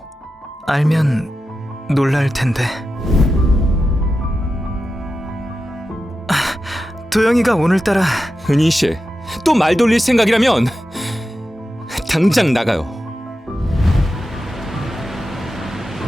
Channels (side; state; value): both; normal; correlation 0.91